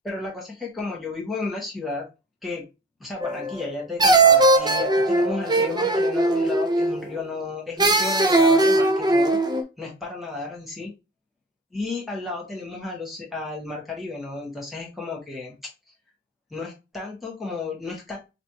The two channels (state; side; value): normal; both; correlation 0.32